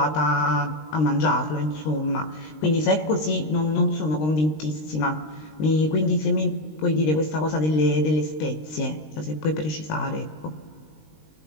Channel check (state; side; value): late; right; 19 ms